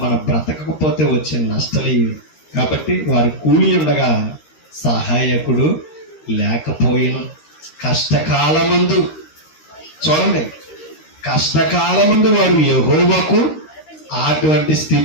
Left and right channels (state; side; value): late; right; 13 ms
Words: మనం బ్రతకకపోతే వచ్చే నష్టాలు ఇవి. కాబట్టి వారి కూలి ఉండగా సహాయకుడు లేకపోయిన కష్టకాలమందు, చూడండి, కష్టకాలమందు వారు యెహోవాకు, అటువంటి